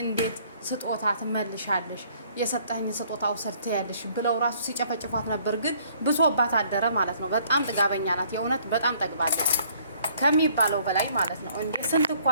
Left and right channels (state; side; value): inverted; both; correlation -0.61